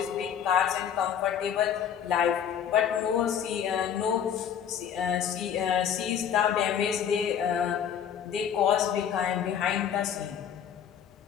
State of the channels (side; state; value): right; quieter; 8.6 dB